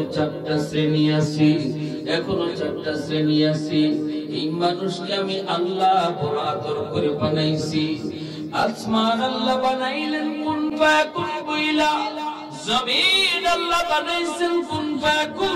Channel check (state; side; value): identical; both; correlation 1.00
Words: 4টা শ্রেণী আছে, এখনো 4টা শ্রেণী আছে। এই মানুষকে আমি আল্লাহ বড় আদর করে বানাইছি। আসমান আল্লাহ বানাইলেন কুন ফায়াকুন বইলা, জমিন আল্লাহ বানাইছেন কুন